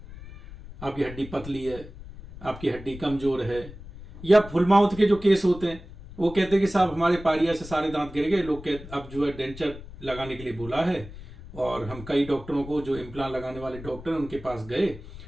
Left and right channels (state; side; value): noise; left; rumble, 15 dB below the sound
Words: आपकी हड्डी पतली है, आपकी हड्डी कमजोर है, या फुल माउथ के जो केस होते हैं वो कहते हैं कि साहब हमारे पारिया से सारे दांत गिर गए, लोग कहते अब जो है डेंचर लगाने के लिए बोला है। और हम कई डॉक्टरों को, जो इम्प्लांट लगाने वाले डॉक्टर उनके पास गए